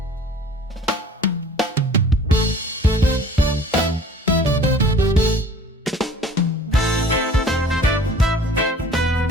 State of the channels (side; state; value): both; normal; correlation 0.49